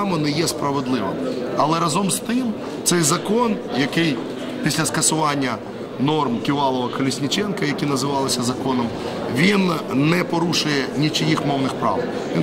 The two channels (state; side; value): identical; both; correlation 1.00